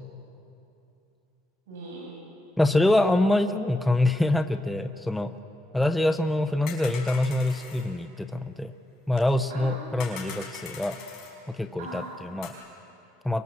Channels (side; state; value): both; normal; correlation 0.88